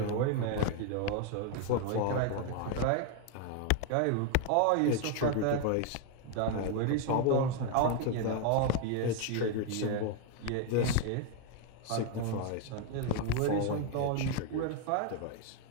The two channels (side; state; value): both; different; correlation 0.01